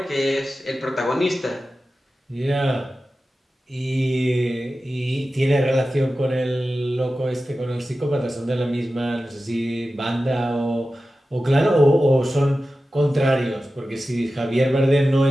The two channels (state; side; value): normal; both; correlation 0.94